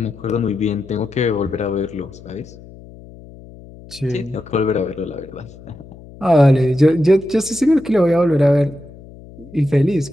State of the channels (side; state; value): left; noise; hum, 19 dB below the sound